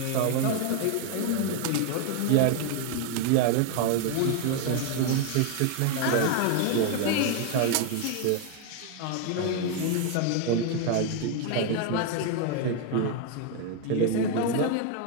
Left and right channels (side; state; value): both; different; correlation 0.01